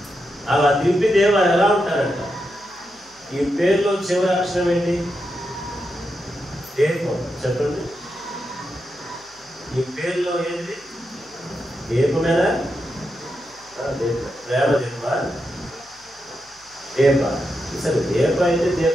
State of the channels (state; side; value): noise; left; hum, 30 dB below the sound